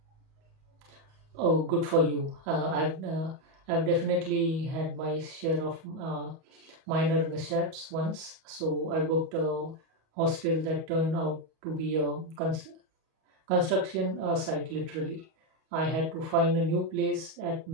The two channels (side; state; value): left; late; 38 ms